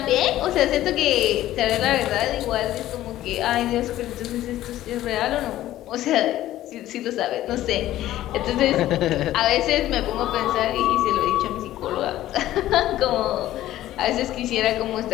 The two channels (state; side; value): quieter; right; 14.1 dB